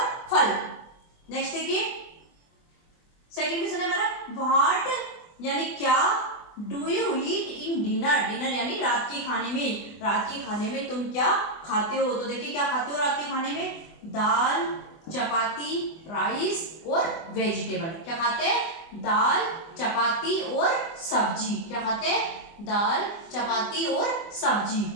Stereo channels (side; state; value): right; late; 24 ms